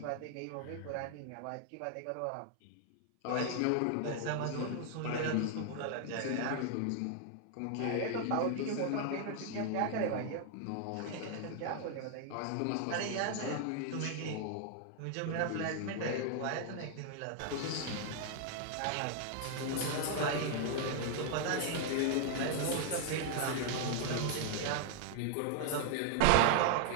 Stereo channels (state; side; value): different; both; correlation 0.00